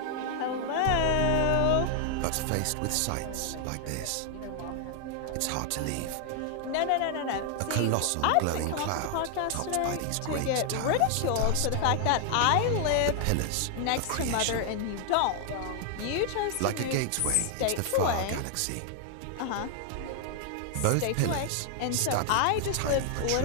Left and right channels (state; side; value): different; both; correlation 0.00